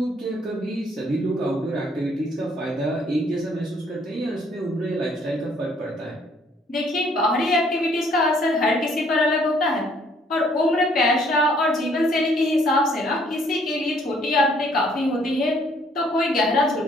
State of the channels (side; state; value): both; normal; correlation 0.64